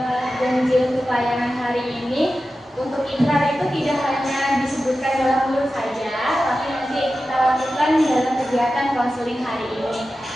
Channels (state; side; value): normal; both; correlation 0.93